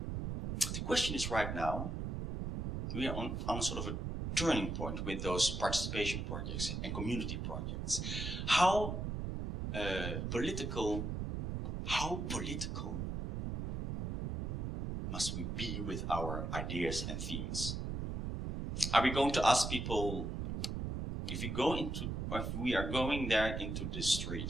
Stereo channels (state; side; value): noise; right; rumble, 3 dB below the sound